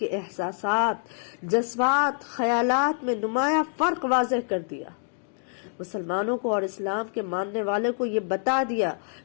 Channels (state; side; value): silent; right; digital silence